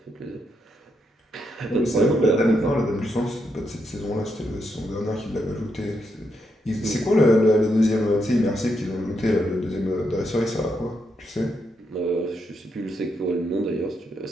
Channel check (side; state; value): both; normal; correlation 0.80